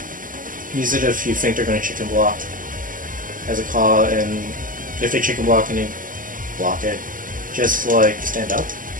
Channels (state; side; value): late; left; 0.39 ms